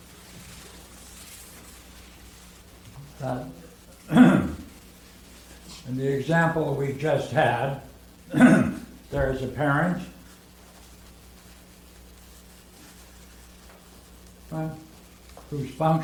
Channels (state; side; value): identical; both; correlation 1.00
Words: in the example we just had, there is a parent, right, who's